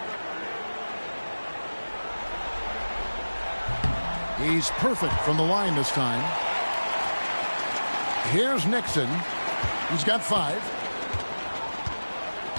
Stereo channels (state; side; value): inverted; both; correlation -1.00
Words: He's perfect from the line this time. Here's Nixon. He's got 5.